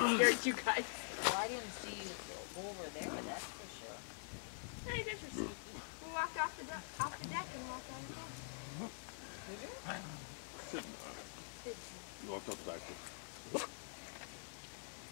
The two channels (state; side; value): silent; right; digital silence